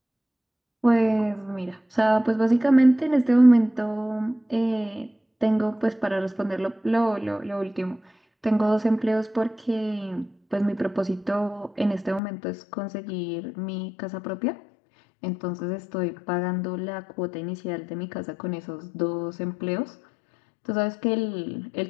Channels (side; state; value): right; drops out; at 12.2 s